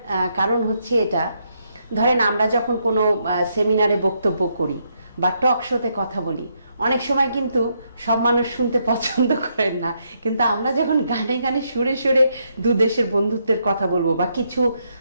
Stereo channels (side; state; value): both; inverted; correlation -0.77